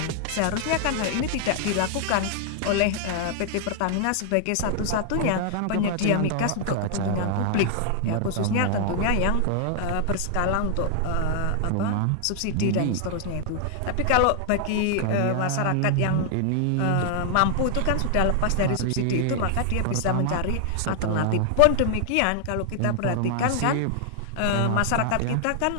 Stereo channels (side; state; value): both; different; correlation 0.00